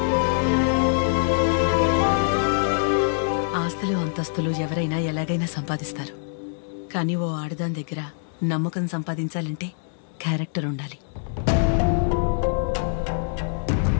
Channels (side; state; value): right; silent; digital silence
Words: ఆస్తులు అంతస్తులు ఎవరైనా ఎలాగైనా సంపాదిస్తారు, కానీ ఓ ఆడదాని దగ్గర నమ్మకం సంపాదించాలంటే క్యారెక్టర్ ఉండాలి.